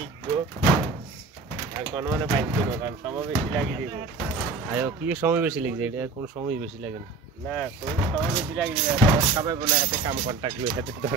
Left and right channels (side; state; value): left; quieter; 3.8 dB